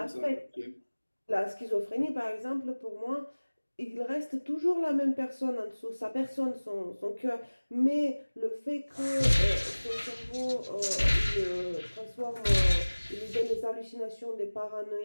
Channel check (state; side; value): inverted; both; correlation -1.00